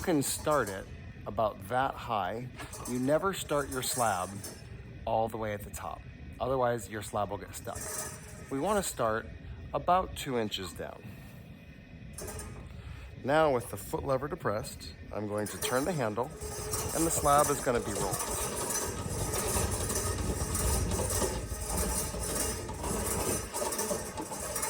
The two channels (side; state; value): both; identical; correlation 1.00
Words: start it about that high. You never start your slab all the way at the top. Otherwise, your slab will get stuck. We want to start about 2 inches down. Now, with the foot lever depressed, I'm going to turn the handle, and the slab is going to be rolled.